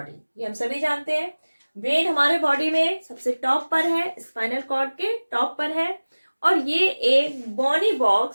ये हम सभी जानते हैं। ब्रेन हमारे बॉडी में सबसे टॉप पर है, स्पाइनल कॉर्ड के टॉप पर है, और ये एक बोनी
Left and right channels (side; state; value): both; inverted; correlation -1.00